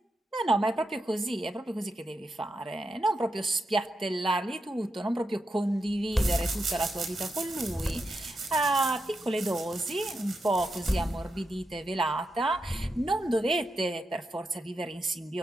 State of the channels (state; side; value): normal; both; correlation 0.86